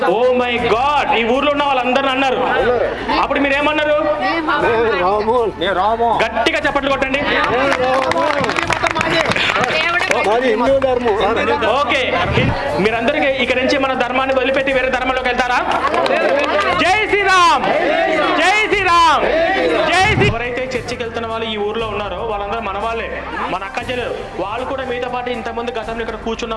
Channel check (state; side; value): identical; both; correlation 1.00